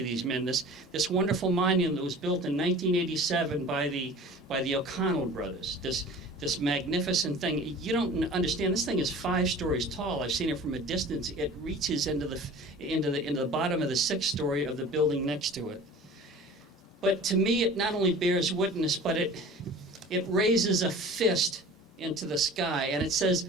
these men. This wonderful monument that was built in 1987 by the O'Connell brothers. This magnificent thing. You don't understand. This thing is 5 stories tall. I've seen it from a distance. It reaches into the bottom of the 6th story of the building next to it. But to me, it not only bears witness, but it raises a fist into the sky, and it says,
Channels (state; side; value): normal; both; correlation 0.42